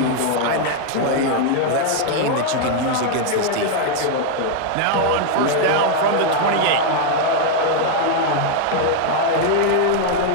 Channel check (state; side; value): different; both; correlation 0.00